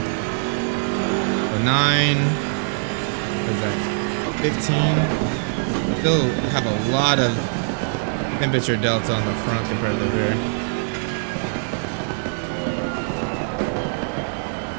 9, what is that? 15. Still have a lot of temperature delta on the front compared to the rear.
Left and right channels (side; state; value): left; silent; 63 dB below the other